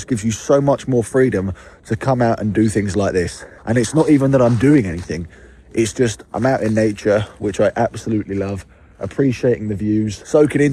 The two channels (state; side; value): identical; both; correlation 1.00